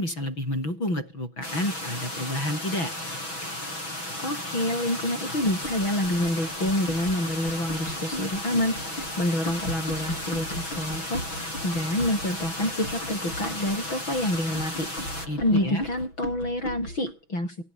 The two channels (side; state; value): right; late; 6.1 ms